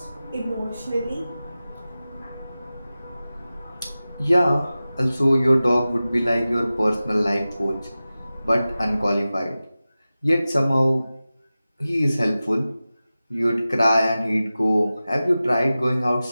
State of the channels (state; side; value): inverted; both; correlation -0.96